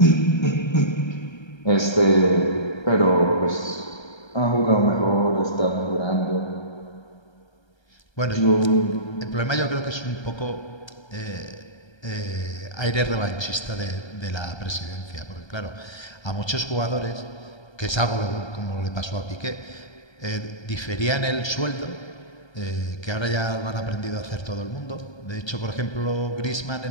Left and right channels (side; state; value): right; late; 1.3 ms